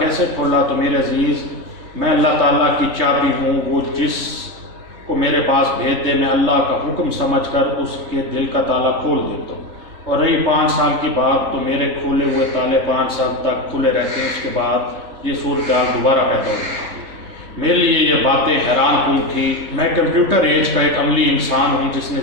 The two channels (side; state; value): left; late; 3.3 ms